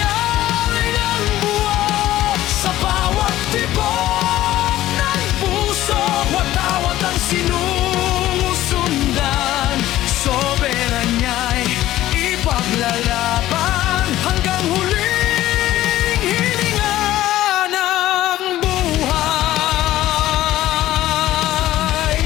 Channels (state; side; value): quieter; right; 14.6 dB